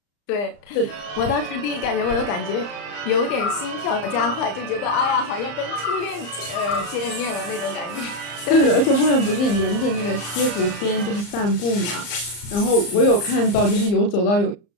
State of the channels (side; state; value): right; late; 34 ms